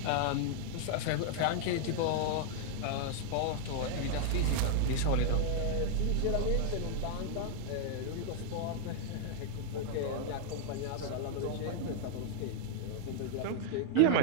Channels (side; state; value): both; different; correlation 0.00